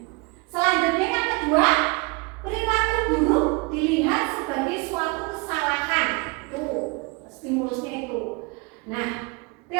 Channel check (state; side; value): quieter; left; 28.3 dB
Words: Selanjutnya yang kedua, perilaku buruk dilihat sebagai suatu kesalahan. Tuh, stimulusnya itu. Nah,